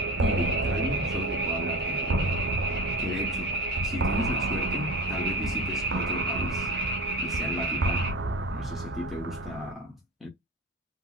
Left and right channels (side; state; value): both; normal; correlation 0.29